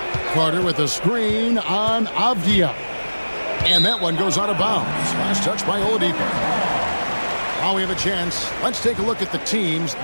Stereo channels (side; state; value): both; inverted; correlation -1.00